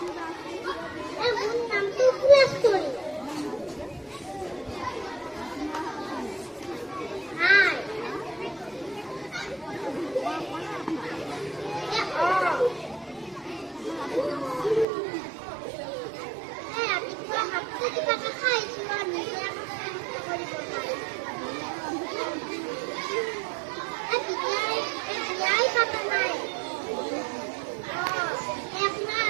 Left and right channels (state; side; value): drops out; left; at 14.9 s